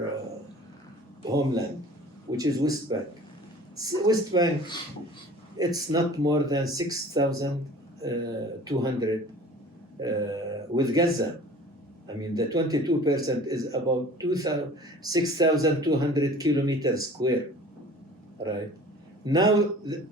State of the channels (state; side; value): normal; both; correlation 0.45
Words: homeland, which is West Bank. West Bank, it's not more than 6,200 with Gaza. I mean, the 22% is about 6,200 kilometers square, right? Now